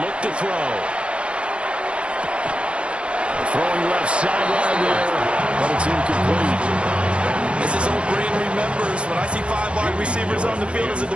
look to throw. Throwing left sideline there, but it's incomplete. As his old brain remembers, when I see 5 wide receivers on the field as a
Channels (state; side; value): late; left; 0.058 ms